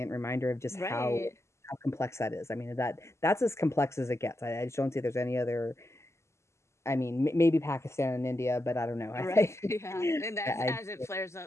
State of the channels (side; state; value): right; late; 0.13 ms